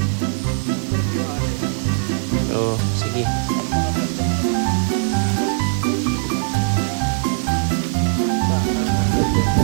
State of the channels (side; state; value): left; silent; digital silence